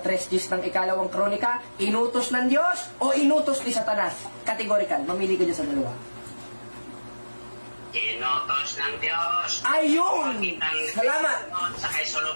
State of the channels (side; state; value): both; inverted; correlation -1.00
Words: days ng ikalawang kronika? Inutos ng Diyos o inutos ni Satanas? Categorical, mamili ka dyan sa dalawa. Inutos ng Diyos. Ayun! Salamat! Sa kay